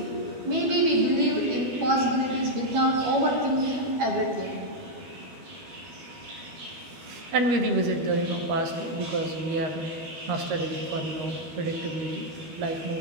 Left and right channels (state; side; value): late; left; 12 ms